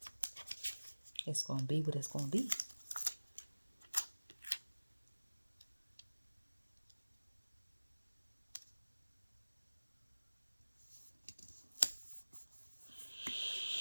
It's going to be what it's going to be.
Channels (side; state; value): both; inverted; correlation -1.00